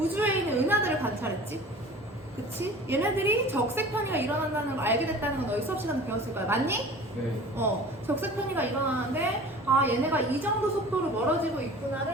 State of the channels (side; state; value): both; normal; correlation 0.42